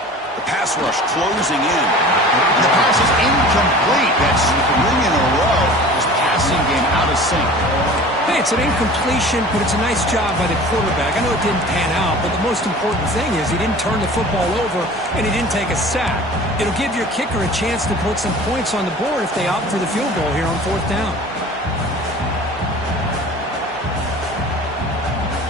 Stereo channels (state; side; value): normal; both; correlation 0.42